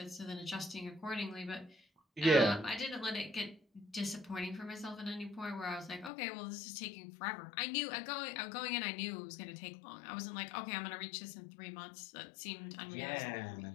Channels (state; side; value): drops out; right; at 6.1 s